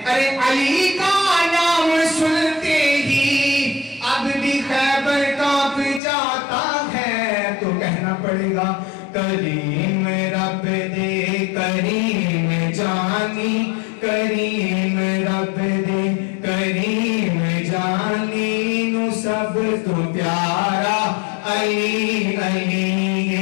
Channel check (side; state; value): right; drops out; at 6.0 s